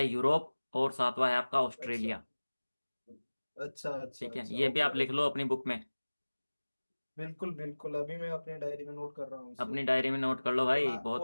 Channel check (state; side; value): inverted; both; correlation -1.00